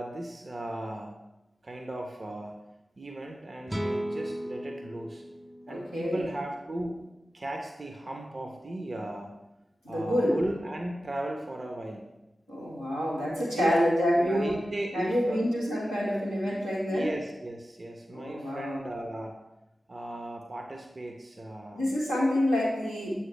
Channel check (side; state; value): both; normal; correlation 0.93